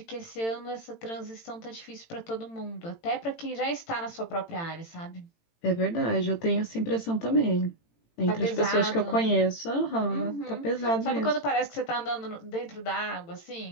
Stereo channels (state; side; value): late; right; 18 ms